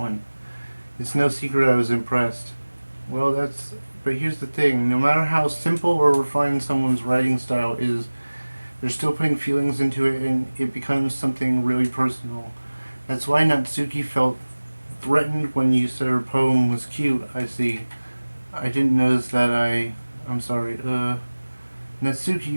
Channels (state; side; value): inverted; both; correlation -1.00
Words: It's no secret I was impressed. Well, but here's the thing. No matter how simple or refined someone's writing style is, they're still putting feelings into it and it becomes something really personal. That's why Natsuki felt threatened when you said her poem was cute, I see. I didn't notice that I'm sorry. Natsuki,